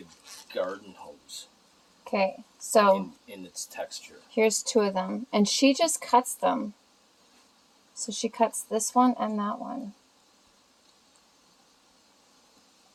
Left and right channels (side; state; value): both; identical; correlation 1.00